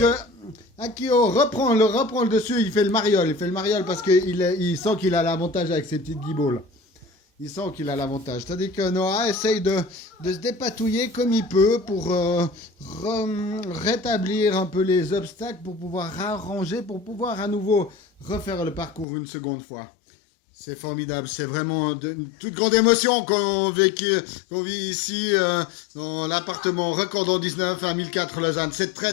Akio reprend le dessus, il fait le mariole parce qu'il sent qu'il a l'avantage avec ses petites guiboles. Il sent qu'il a l'avantage. C'est-à-dire que Noah essaye de se dépatouiller comme il peut pour rétablir un peu les obstacles, pour pouvoir arranger, pour pouvoir à nouveau refaire le parcours une seconde fois. C'est formidable, c'est vraiment une toute grande émotion qu'on vit ici dans l'appartement Recordon 19 à 1004 Lausanne. C'est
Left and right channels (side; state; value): right; drops out; at 19.1 s